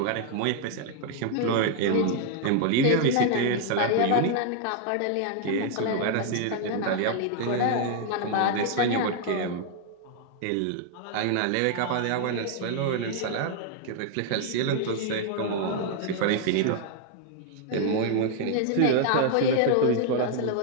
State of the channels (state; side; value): different; both; correlation 0.00